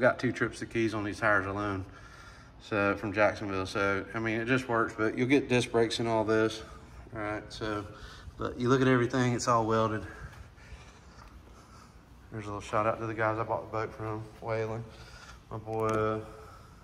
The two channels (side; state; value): both; identical; correlation 1.00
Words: 2 trips to Keys on these tires alone. So from Jacksonville. So, I mean, it just works, but you'll get disc brakes and all this. All right, so, but you look at everything, it's all welded. There's a little shout out to the guys I bought the boat from, Whaling. My boy